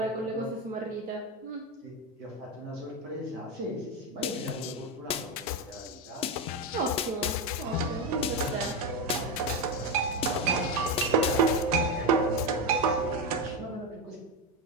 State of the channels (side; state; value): both; normal; correlation 0.12